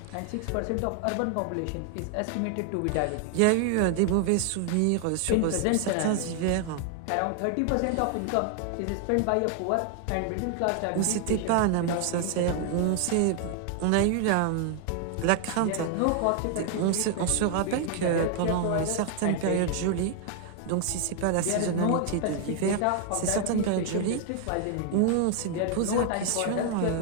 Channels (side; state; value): both; different; correlation 0.00